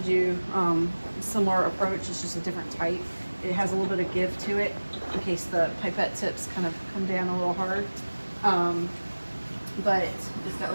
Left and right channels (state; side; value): inverted; both; correlation -1.00